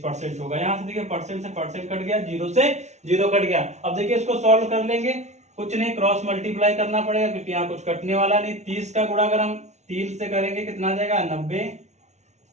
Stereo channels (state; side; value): late; left; 0.33 ms